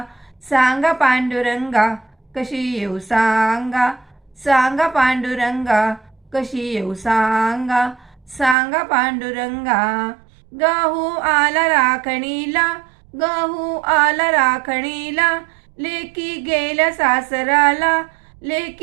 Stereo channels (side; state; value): left; drops out; at 8.6 s